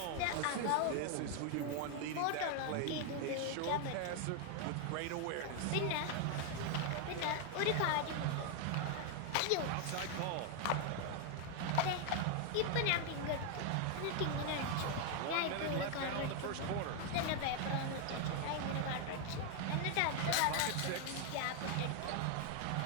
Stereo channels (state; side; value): different; both; correlation 0.00